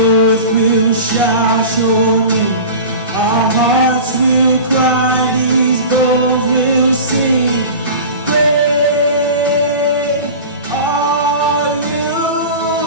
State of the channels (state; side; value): inverted; both; correlation -0.34